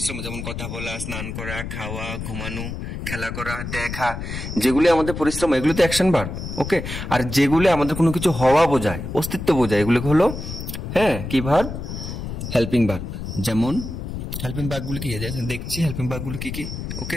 যেমন কথা বলা, স্নান করা, খাওয়া, ঘুমানো, খেলা করা, দেখা, যেগুলি আমাদের পরিশ্রম, এগুলো তো অ্যাকশন ভার্ব। ওকে, আর যেগুলি আমাদের কোনো কিছু হওয়া বোঝায়, অস্তিত্ব বোঝায়, এগুলো হলো কি ভার্ব, হেল্পিং ভার্ব। যেমন হেল্পিং ভার্বগুলো কি দেখছি, হেল্পিং ভার্বগুলো কি কি। ওকে,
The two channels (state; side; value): noise; left; rumble, 6 dB below the sound